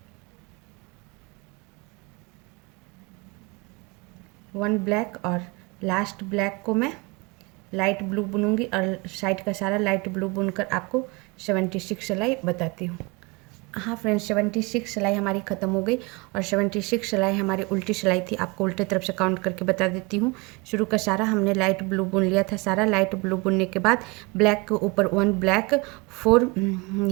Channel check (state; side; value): quieter; left; 26.6 dB